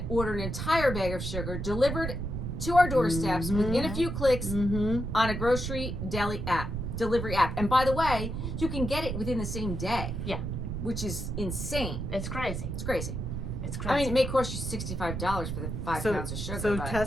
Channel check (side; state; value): right; noise; rumble, 4 dB below the sound